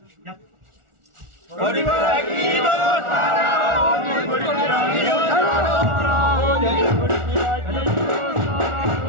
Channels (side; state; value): left; late; 1.4 ms